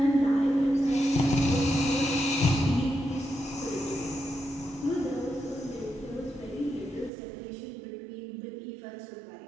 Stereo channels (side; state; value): left; drops out; at 7.1 s